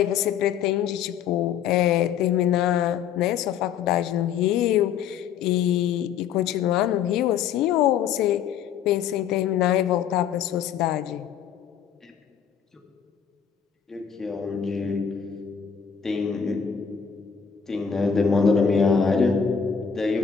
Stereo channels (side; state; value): right; quieter; 7.8 dB